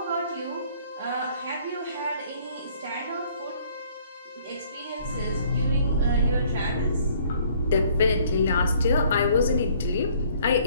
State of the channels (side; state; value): both; inverted; correlation -0.60